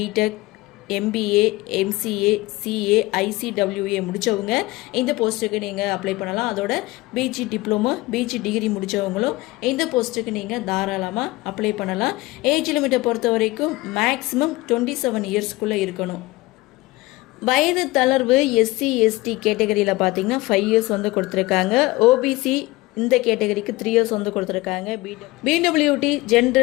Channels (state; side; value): quieter; right; 20.4 dB